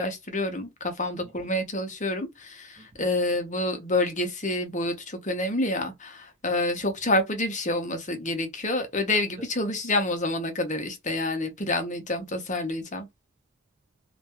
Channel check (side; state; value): both; normal; correlation 0.10